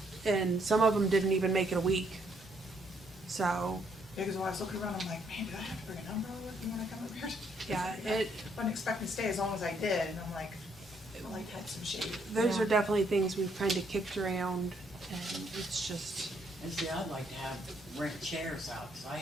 and some of them didn't even make it a week. So Because when I was looking around, I'm like, man, did I have to bring an umbrella with me when I come over here? yeah, Wasn't expecting to stay as long as I did, and I'm like, I like had some shade. those Yeah. are definitely things we've kind of kicked around, and it's just And see, I'd like to have rent chairs out, cause I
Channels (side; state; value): both; normal; correlation 0.71